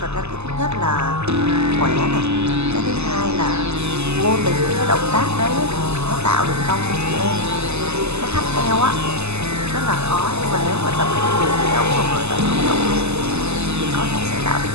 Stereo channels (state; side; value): late; left; 0.80 ms